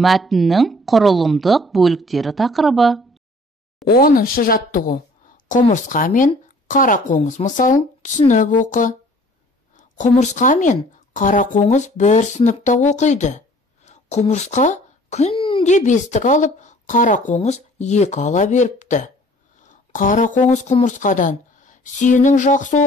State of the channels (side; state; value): both; normal; correlation 0.53